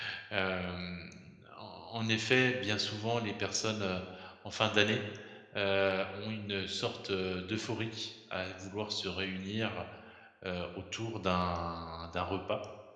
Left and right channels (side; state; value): both; identical; correlation 1.00